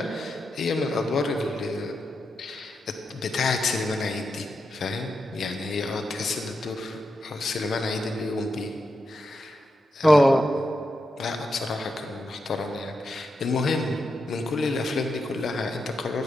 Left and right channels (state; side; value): normal; both; correlation 0.86